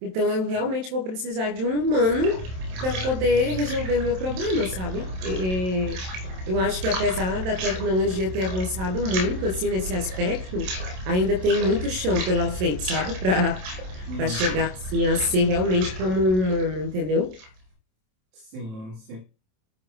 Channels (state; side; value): late; left; 27 ms